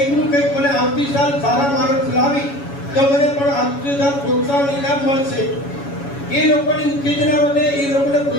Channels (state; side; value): late; right; 7.1 ms